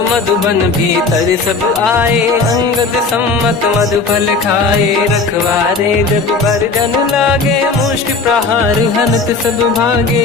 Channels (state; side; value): quieter; right; 4.1 dB